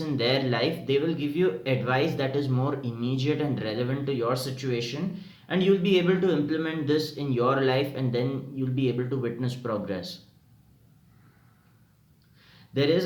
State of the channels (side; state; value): both; identical; correlation 1.00